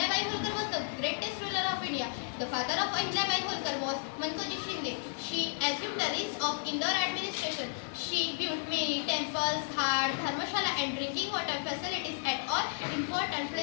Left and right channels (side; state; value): right; silent; digital silence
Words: Holkar was the greatest ruler of India. The father of Ahilyabai Holkar was Mankoji Shinde. She assumed the reins of Indore administration. She built many temples, ghats, dharmashala and drinking water facilities at all important